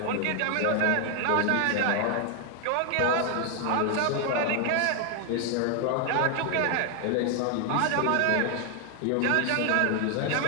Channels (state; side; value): different; both; correlation 0.01